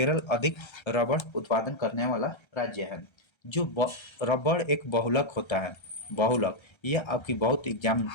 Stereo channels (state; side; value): late; right; 1.3 ms